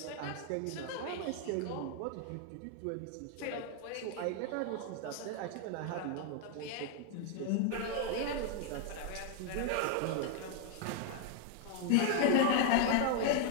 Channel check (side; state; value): both; different; correlation 0.00